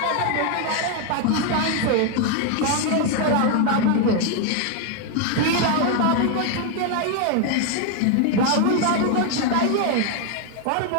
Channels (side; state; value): both; different; correlation 0.01